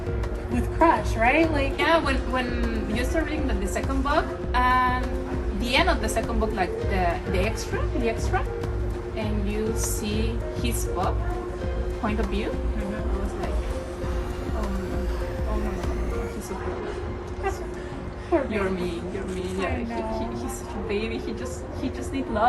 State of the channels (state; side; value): identical; both; correlation 1.00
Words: with Crush, right? Like Yeah, when you start reading the second book, and the end of the second book, like the extra, and you see his point of view, I was like, oh no, he's so good. poor baby. You're mean. Yeah, I know. he's such a baby. He just needs